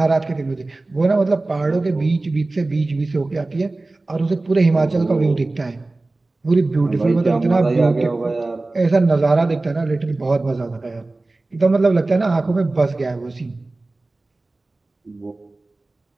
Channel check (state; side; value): quieter; left; 3.1 dB